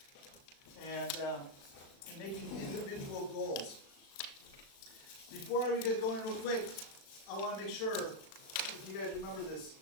and making individual goals. Before we get going real quick, I want to make sure, if you guys remember this,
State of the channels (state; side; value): late; right; 36 ms